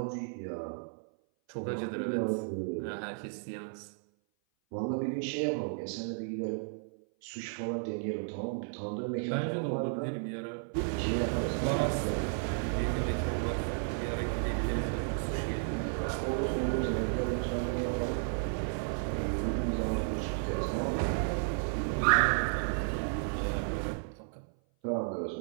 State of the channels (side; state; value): left; silent; 56 dB below the other